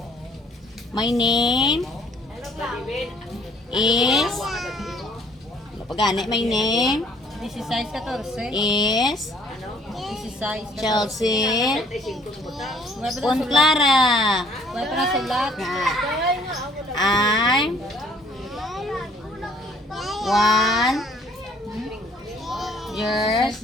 My name is... Pagani, my name 16-14. is 16. Chelsea Clara. May pa na sulat. I'm 1 years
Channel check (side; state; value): both; normal; correlation 0.60